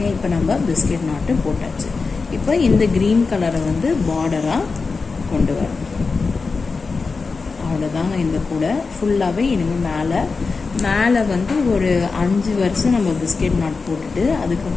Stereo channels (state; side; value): quieter; right; 4.4 dB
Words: இப்போ நம்ம பிஸ்கெட் நாட்டு போட்டாச்சு. இப்போ இந்த க்ரீன் கலரை வந்து பார்டராக கொண்டு வரும். அவ்வளோதாங்க. இந்த கூடை ஃபுல்லாகவே இனிமேல் மேலே வந்து ஒரு 5 வருஷம் நம்ம பிஸ்கெட் நாட் போட்டுட்டு